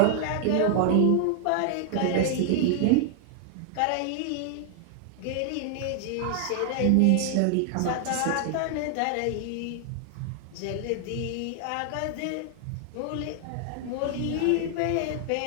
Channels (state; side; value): different; both; correlation 0.00